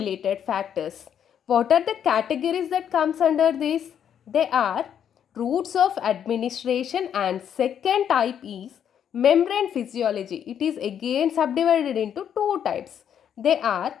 factors. What are the categories that comes under this? They are routes of administration and second type is membrane physiology. It is again subdivided into two types. They are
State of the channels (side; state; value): right; quieter; 8.9 dB